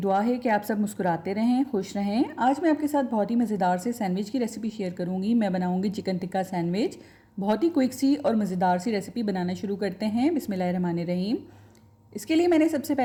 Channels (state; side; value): identical; both; correlation 1.00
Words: है कि आप सब मुस्कुराते रहें, खुश रहें। आज मैं आपके साथ बहुत ही मज़ेदार से सैंडविच की रेसिपी शेयर करूंगी। मैं बनाऊंगी चिकन टिक्का सैंडविच। बहुत ही क्विक सी और मज़ेदार सी रेसिपी बनाना शुरू करते हैं। बिस्मिल्लाहिर्रहमानिर्रहीम। इसके लिए मैंने सबसे